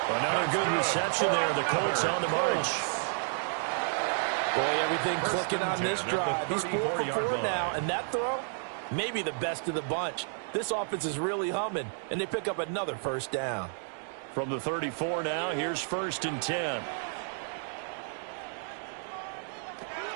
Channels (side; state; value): left; silent; 57 dB below the other